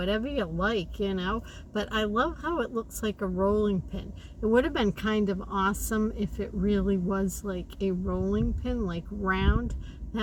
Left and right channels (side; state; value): both; identical; correlation 1.00